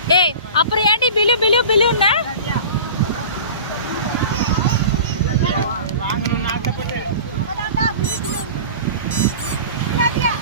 ஏய் அப்புறம் ஏன்டி பிலு பிலு பிலுன்னா வாங்கணும்னு ஆசைப்பட்டு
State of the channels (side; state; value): both; inverted; correlation -0.37